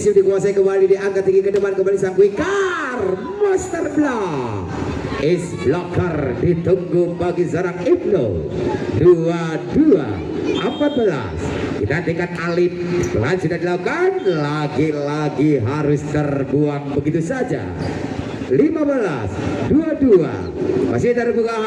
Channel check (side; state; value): both; identical; correlation 1.00